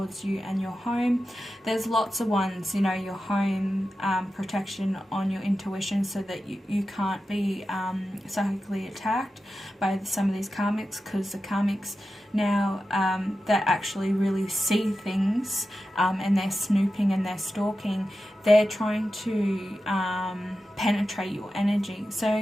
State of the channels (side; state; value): both; normal; correlation 0.92